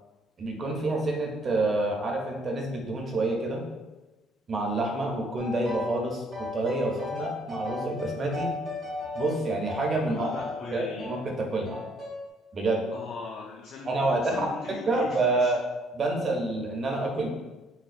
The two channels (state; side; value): normal; both; correlation 0.66